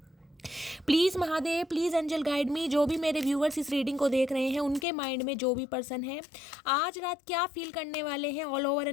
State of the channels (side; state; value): right; drops out; at 4.9 s